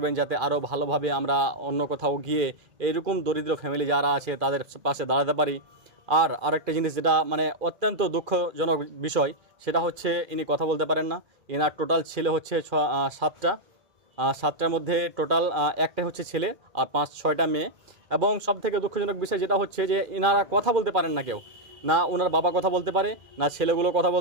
যাতে আরও ভালোভাবে আমরা অন্য কোথাও গিয়ে এইরকম দরিদ্র ফ্যামিলি যারা আছে তাদের পাশে দাঁড়াতে পারি। আর আরেকটা জিনিস যেটা মানে অত্যন্ত দুঃখজনক বিষয়, সেটা হচ্ছে ইনি কথা বলতে পারেন না। এনার টোটাল ছেলে হচ্ছে 7টার মধ্যে টোটাল একটাই হচ্ছে ছেলে আর 5-6টা মেয়ে। এবং সবথেকে দুঃখজনক বিষয় যেটা হচ্ছে যে এনারা কথা বলতে পারেন না, কেউ না ওনার বাবা কথা বলতে পারে, না ছেলেগুলো কথা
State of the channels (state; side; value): late; left; 2.3 ms